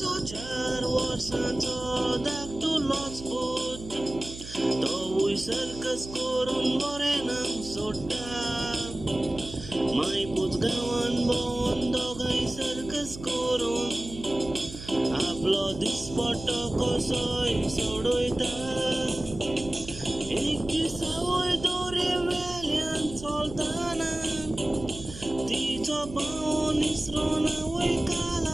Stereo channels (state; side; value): noise; right; hum, 13 dB below the sound